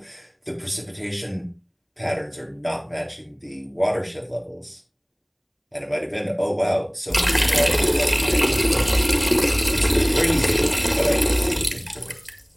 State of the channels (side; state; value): both; identical; correlation 1.00